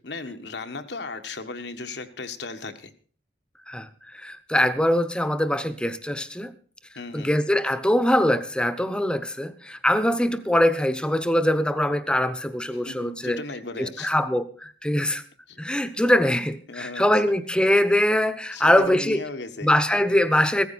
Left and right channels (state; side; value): normal; both; correlation 0.87